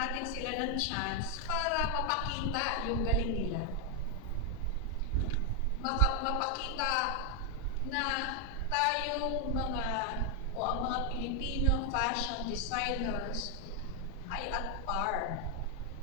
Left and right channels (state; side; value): normal; both; correlation 0.01